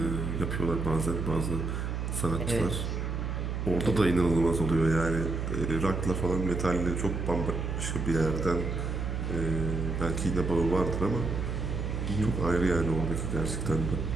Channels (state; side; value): noise; right; hum, 2 dB below the sound